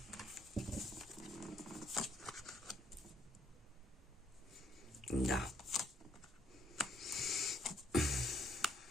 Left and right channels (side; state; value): both; normal; correlation 0.69